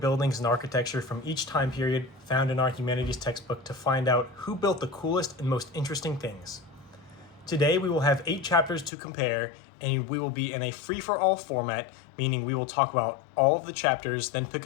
and architecture from each time period found in our humanities textbook to find out who built the coolest and most interesting things. Today we will have 8 chapters to compare, and we will be in a free-for-all format, meaning we will talk about all of the chapters, then pick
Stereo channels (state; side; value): drops out; right; at 8.9 s